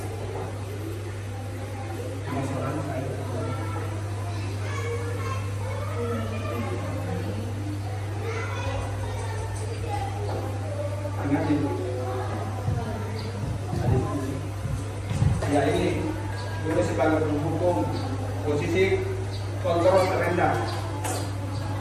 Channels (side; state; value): both; identical; correlation 1.00